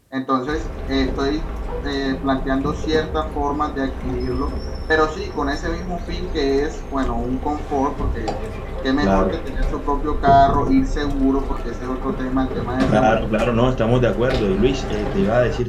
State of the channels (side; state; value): both; identical; correlation 1.00